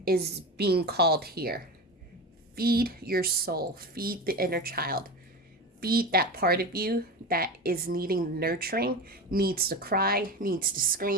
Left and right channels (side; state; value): both; normal; correlation 0.25